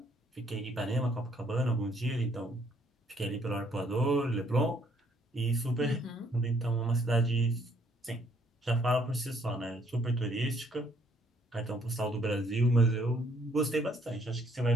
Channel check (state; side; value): normal; both; correlation 0.66